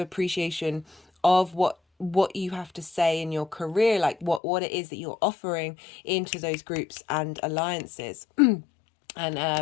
of what what you have to say in your career, like what it is that you're offering into those groups and alliances.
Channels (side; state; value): right; drops out; at 4.4 s